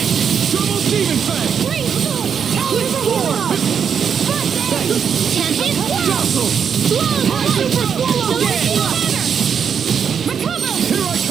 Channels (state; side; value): quieter; left; 7.3 dB